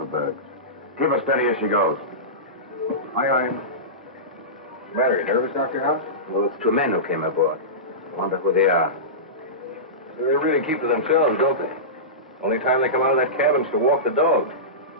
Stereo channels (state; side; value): normal; both; correlation -0.19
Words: bergs. Keep her steady as she goes. Aye, aye. What's the matter? You nervous, Dr. House? Those 2 men who came aboard. I wonder who they are. They really keep to themselves, don't they? Only time they come out of that cabin's to walk the dog.